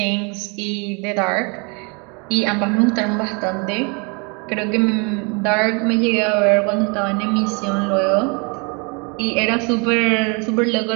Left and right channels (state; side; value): quieter; left; 32.4 dB